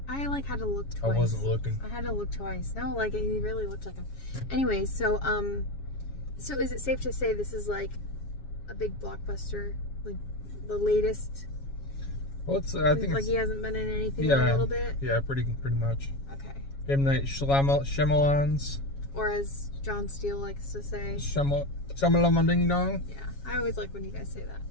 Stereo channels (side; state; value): right; late; 7.2 ms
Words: I had to look twice. I wasn't looking. I had to look twice. No, he really looked like him. Anyways, so is it safe to say this is like a big blockbuster, like the latest? Well, I think like he hasn't been in anything in a little bit. Yeah, pretty much. Okay. M. Night Shyamalan's. Or as John Steele likes to say, Shyamalan Ding Dong. Yeah, I always like when you guys say that.